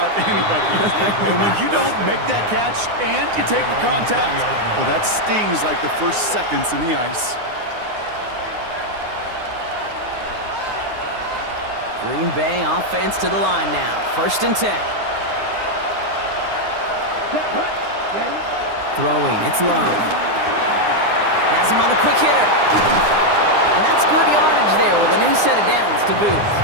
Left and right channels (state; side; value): late; left; 9.7 ms